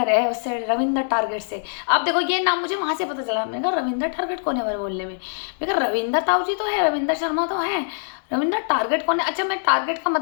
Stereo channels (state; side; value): silent; right; digital silence